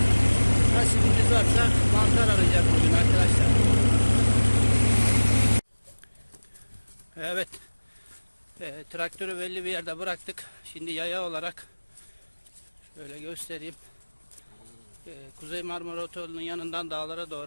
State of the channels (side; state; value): both; inverted; correlation -1.00